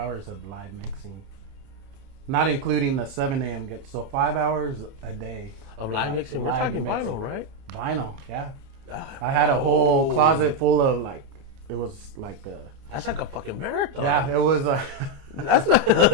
of live mixing. Not including the 7 a.m. get. So 5 hours a day. Of live mixing? We're talking vinyl, right? Vinyl, yeah. I had a whole closet full of like, it was like a... That's like a fucking marathon. Yeah, it was a... That's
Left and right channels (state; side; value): late; left; 29 ms